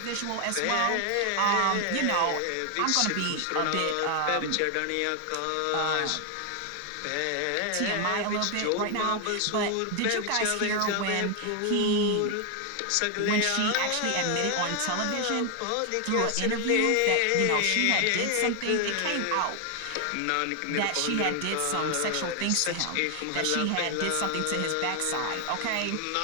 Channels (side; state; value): both; different; correlation 0.01